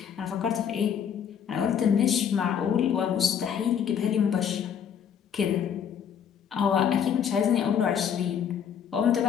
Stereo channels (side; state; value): right; quieter; 8.2 dB